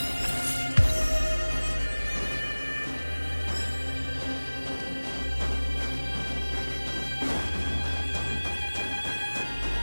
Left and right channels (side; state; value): both; inverted; correlation -1.00